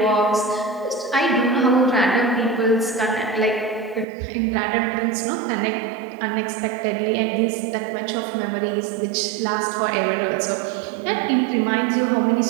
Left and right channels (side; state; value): left; drops out; at 4.0 s